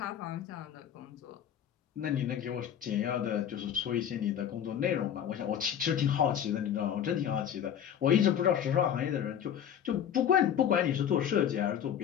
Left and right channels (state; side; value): quieter; right; 9.3 dB